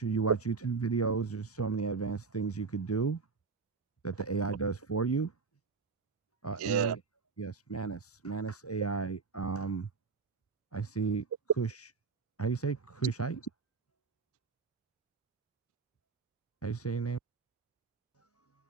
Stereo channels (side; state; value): left; quieter; 4.9 dB